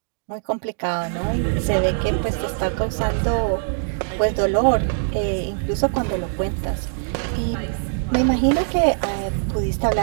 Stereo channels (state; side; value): silent; left; digital silence